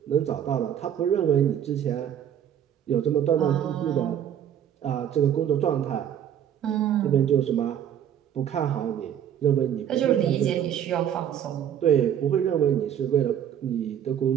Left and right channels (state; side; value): quieter; left; 9.7 dB